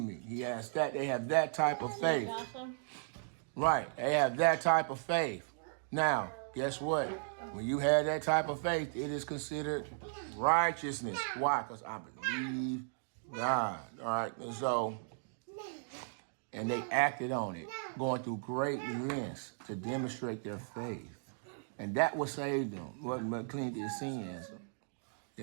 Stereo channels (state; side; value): silent; left; digital silence